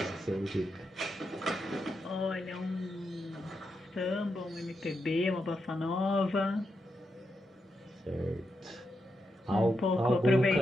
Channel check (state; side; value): normal; both; correlation 0.85